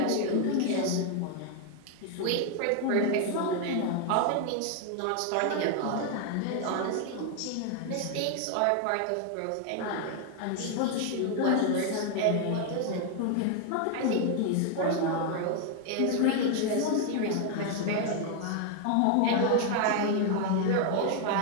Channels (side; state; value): both; different; correlation 0.00